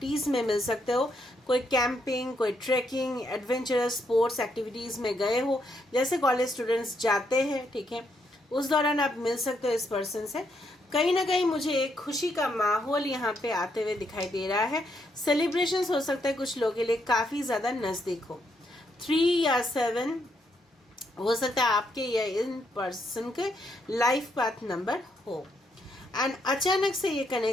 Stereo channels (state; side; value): normal; both; correlation 0.77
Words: में मिल सकते हो, कोई कैंपिंग, कोई ट्रैकिंग, एडवेंचरस स्पोर्ट्स एक्टिविटीज में गए हो, जैसे कॉलेज स्टूडेंट्स जाते हैं, ठीक है, उस दौरान आप मिल सकते हो इस पर्सन से। कहीं ना कहीं मुझे एक खुशी का माहौल यहाँ पे आते हुए दिखाई दे रहा है। सेलिब्रेशंस हो सकता है कुछ लोगों के लिए काफी ज्यादा नजदीक हो। 3 या 7 हो सकता है आपके या इन पर्सन के लाइफ पाथ नंबर हो। एंड अचानक से ये